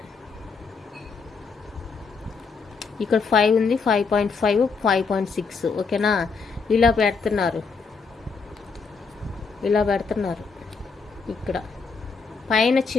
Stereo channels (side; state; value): right; quieter; 4.9 dB